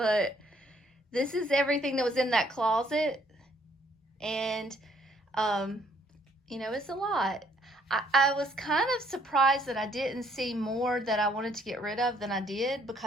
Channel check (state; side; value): normal; both; correlation 0.66